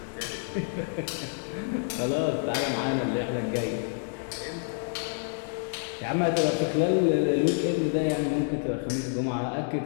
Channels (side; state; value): right; silent; digital silence